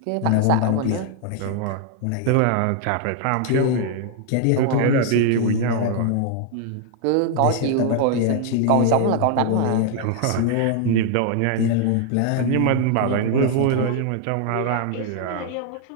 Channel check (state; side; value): different; both; correlation 0.00